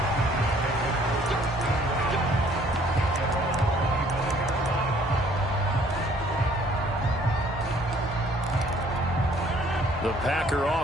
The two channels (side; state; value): both; normal; correlation 0.59